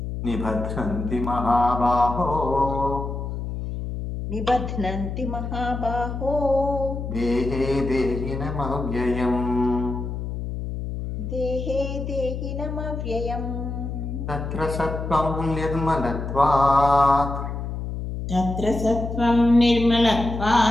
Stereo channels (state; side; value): noise; left; hum, 5 dB below the sound